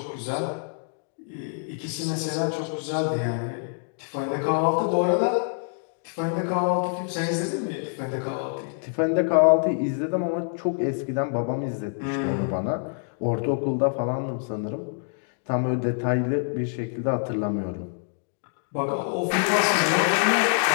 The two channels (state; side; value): silent; right; digital silence